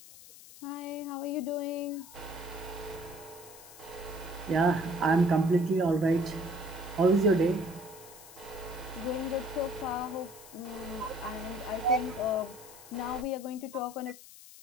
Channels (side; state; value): left; noise; hiss, 18 dB below the sound